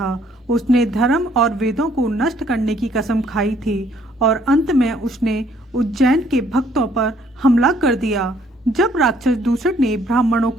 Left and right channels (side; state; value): both; normal; correlation 0.64